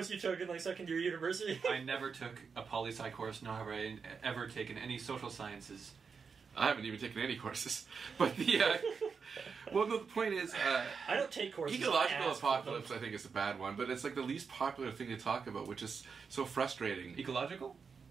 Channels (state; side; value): quieter; left; 5.6 dB